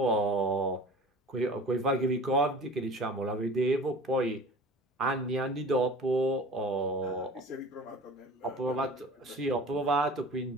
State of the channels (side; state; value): both; normal; correlation 0.40